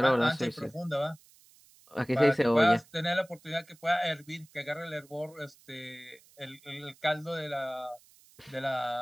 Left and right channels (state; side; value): noise; right; hiss, 27 dB below the sound